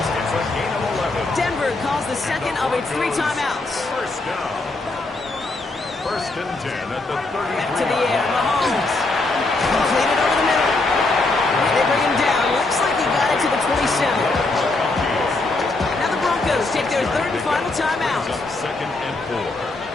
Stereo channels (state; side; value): quieter; right; 3.2 dB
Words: It's a gain of 11. Denver calls the second of its 3 timeouts. First down. 1st and 10 at the 33. Back to the air, Mahomes. Completed over the middle. And they bring him down. Looks like he got it to the 27. Now the Broncos take their 3rd and final timeout. 2nd and 4